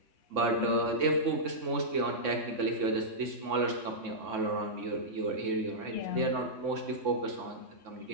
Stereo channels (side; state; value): left; late; 3.6 ms